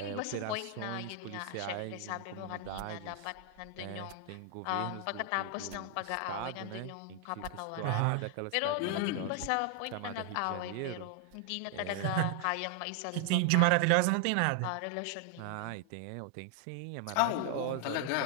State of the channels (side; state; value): both; different; correlation 0.00